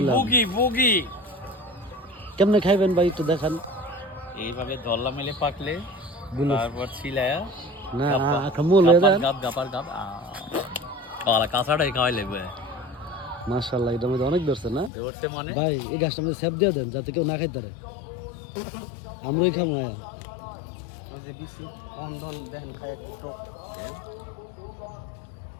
কেমনে খাইবেন ভাই একটু দেখান। এইভাবে দল্লা মেলে পাকলে তারপর ছিলায়া না মূল গাপ গাপার গাপ কাঁচাটাই খাওয়াই লাগবে। মাশাআল্লাহ, এটা মধ্যে অনেক ধরছে না ধরছে মানে ভাই? এই গাছটা মধ্যে সেপ দিয়ে দেন যাতে কেউ না খাইতে পারে। আমরাই খামো আয়া।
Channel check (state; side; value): drops out; right; at 14.9 s